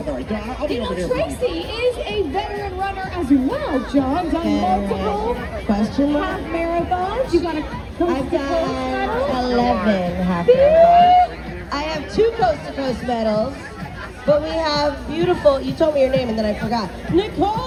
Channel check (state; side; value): identical; both; correlation 1.00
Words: right, Don, I'll be You know, over here. Tracy is a veteran runner as well, John. Done multiple Question mark? half marathons. You got a I've done 11 half Beep. marathons. I have 2 coast-to-coast medals, but we have beautiful, you told me your name and then I forgot.